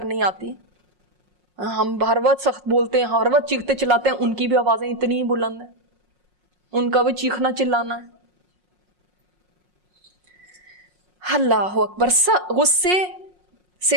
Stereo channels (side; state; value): left; late; 5.5 ms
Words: آتی. ہم ہر وقت سخت بولتے ہیں، ہر وقت چیختے چلاتے ہیں، ان کی بھی آوازیں اتنی ہی بلند ہیں، ان کا بھی چیخنا چلانا ہے. اللہ اکبر. غصے